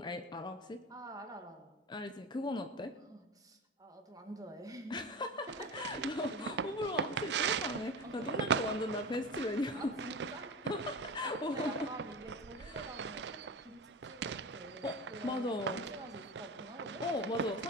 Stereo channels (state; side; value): normal; both; correlation 0.27